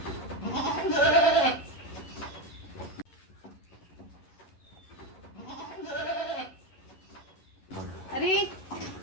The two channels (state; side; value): late; right; 11 ms